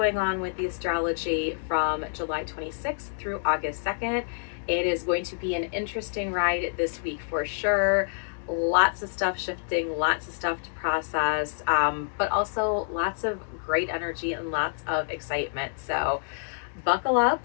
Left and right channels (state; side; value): silent; right; digital silence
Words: on with the astrology from July 26th through August 2nd. It is going to be an interesting ride this week for sure. Lots of stuff shifting, lots of stuff to process, but also lots of great energy and lots of excitement. So buckle up